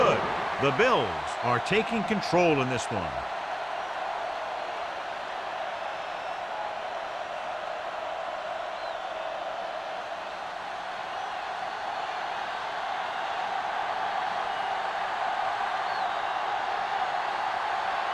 The Bills are taking control in this one.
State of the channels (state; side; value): identical; both; correlation 1.00